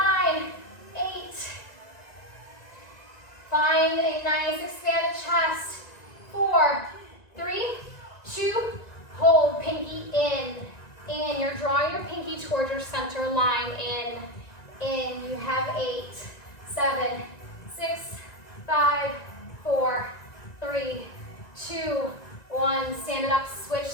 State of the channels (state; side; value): late; right; 1.9 ms